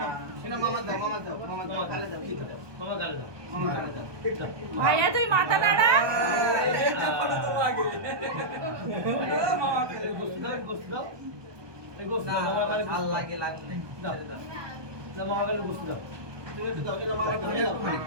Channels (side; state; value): left; late; 1.2 ms